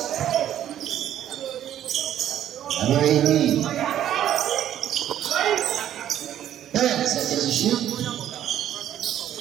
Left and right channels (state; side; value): quieter; left; 11.1 dB